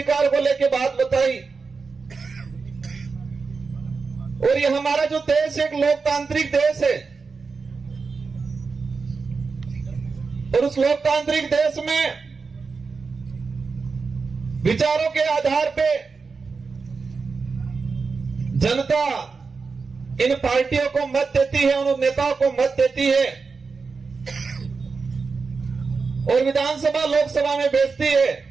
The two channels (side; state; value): left; quieter; 4.7 dB